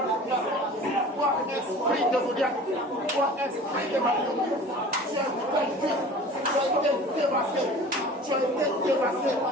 totale. Toi, esprit de Goliath, toi, esprit de Marie, tu as vaincu, tu as été dévasté, tu as été dévasté.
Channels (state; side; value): normal; both; correlation 0.42